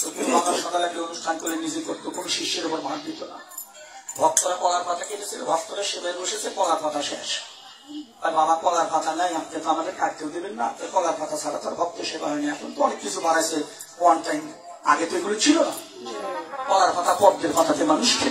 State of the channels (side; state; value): both; identical; correlation 1.00